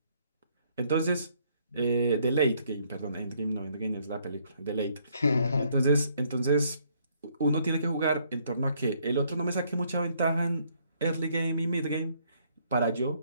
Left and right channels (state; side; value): inverted; both; correlation -0.68